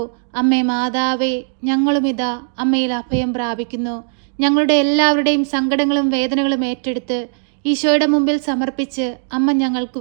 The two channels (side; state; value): left; silent; digital silence